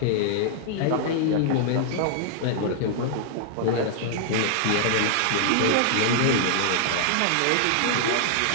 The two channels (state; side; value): different; both; correlation -0.01